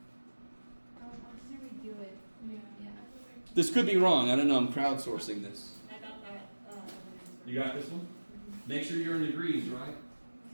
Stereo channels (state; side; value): inverted; both; correlation -1.00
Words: I'm just gonna redo it. Yeah. This could be wrong. I don't know. I'm crowdsourcing this. I got that. You got this one? Make sure you're in degrees, right?